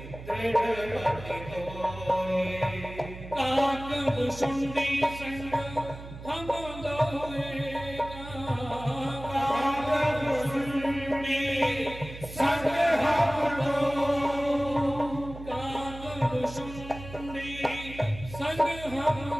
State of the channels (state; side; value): noise; right; hum, 13 dB below the sound